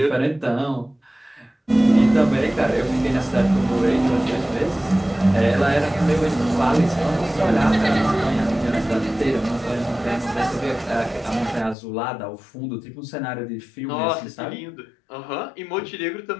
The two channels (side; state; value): right; drops out; at 11.8 s